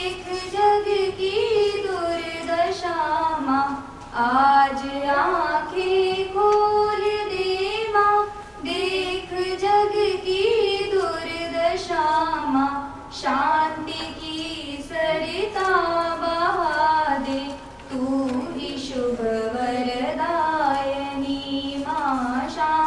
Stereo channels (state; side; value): identical; both; correlation 1.00